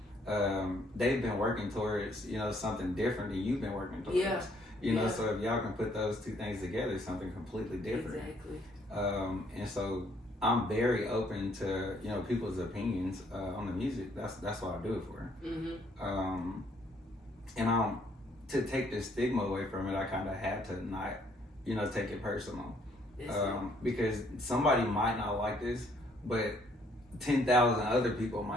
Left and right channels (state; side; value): normal; both; correlation 0.66